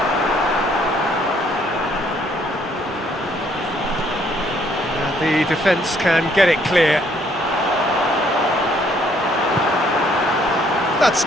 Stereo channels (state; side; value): normal; both; correlation 0.66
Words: The defence can get it clear. That's